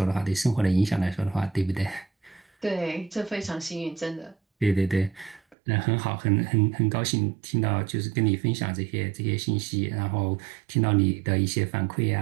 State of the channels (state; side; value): drops out; left; at 5.6 s